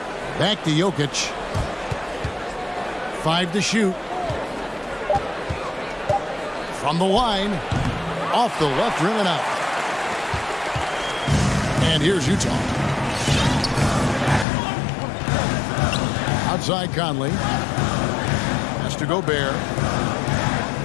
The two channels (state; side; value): drops out; right; at 14.5 s